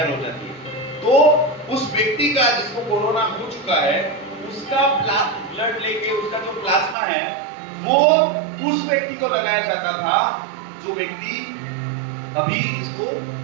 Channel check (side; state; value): left; drops out; at 7.0 s